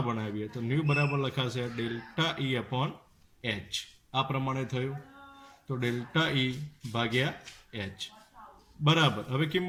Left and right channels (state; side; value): identical; both; correlation 1.00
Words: બનાવીએ તો ન્યુ બરાબર લખાશે ડેલ્ટા ઈ અપોન h. આ પ્રમાણે થયું. તો ડેલ્ટા ઈ ભાગ્યા h બરાબર. હવે